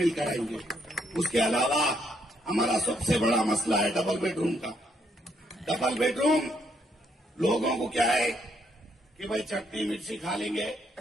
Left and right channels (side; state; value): both; normal; correlation 0.73